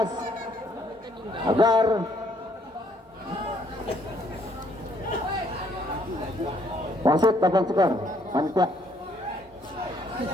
agar wasit dapat skor. Panitia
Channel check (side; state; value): both; normal; correlation 0.67